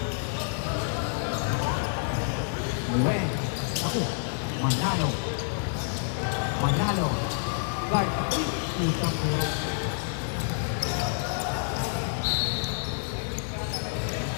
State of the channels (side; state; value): right; silent; digital silence